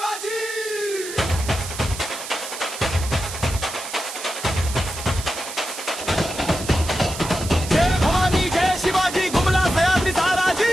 जय भवानी जय शिवाजी घुमला सह्याद्री साराजी,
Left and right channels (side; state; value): right; noise; hiss, 9 dB below the sound